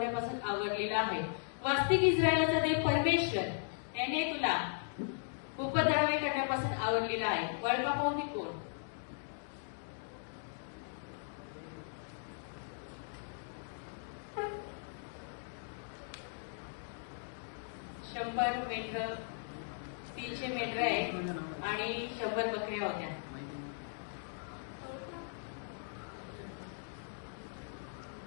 आवरलेला आहे. वास्तविक इस्रायलाचा देव परमेश्वर याने तुला उपद्रवे करण्यापासून आवरलेला आहे. वळपा पाहुणे कोण? 100 मेंढर, 300 मेंढर आहे आणि 100 बकऱ्या होत्या.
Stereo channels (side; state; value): right; silent; digital silence